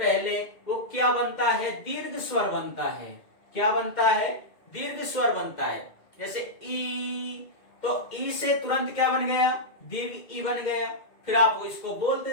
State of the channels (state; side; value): late; right; 2.2 ms